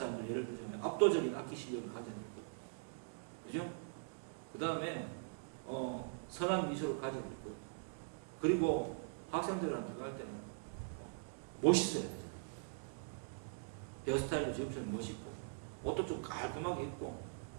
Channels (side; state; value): left; silent; digital silence